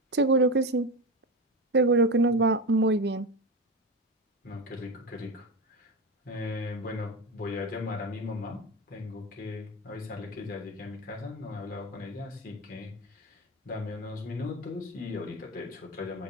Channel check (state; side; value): normal; both; correlation 0.19